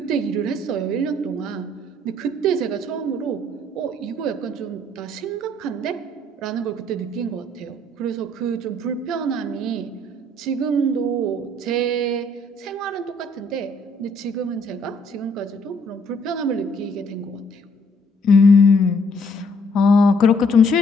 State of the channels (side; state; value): both; normal; correlation 0.64